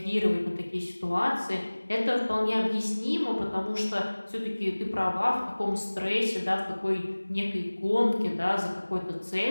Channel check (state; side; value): inverted; both; correlation -1.00